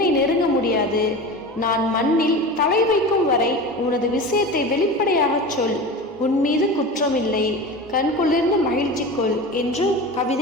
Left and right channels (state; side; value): normal; both; correlation 0.30